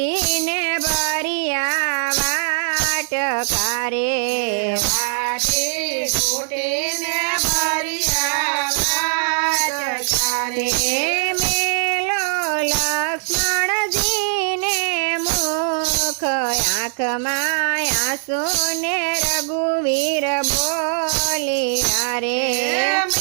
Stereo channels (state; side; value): silent; left; 65 dB below the other